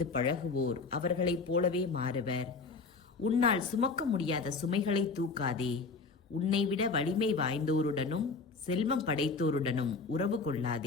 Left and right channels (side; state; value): right; quieter; 4.4 dB